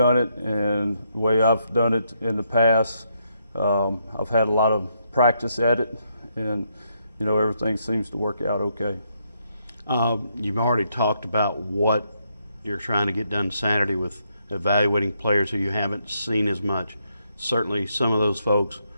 it and the way I've done it in the past, I've had a lot of practice at it, and everything seems to work out okay. You've already talked about what you're trying to get done Saturday with evaluating players who you haven't seen as much. Certainly some of those folks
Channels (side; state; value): both; inverted; correlation -0.76